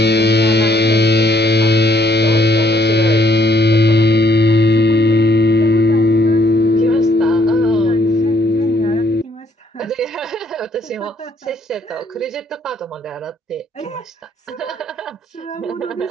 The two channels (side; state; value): both; normal; correlation 0.67